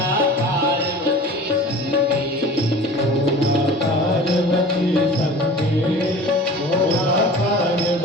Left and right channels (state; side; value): normal; both; correlation 0.40